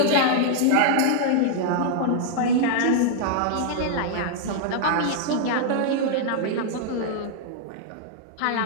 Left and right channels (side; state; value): both; different; correlation -0.01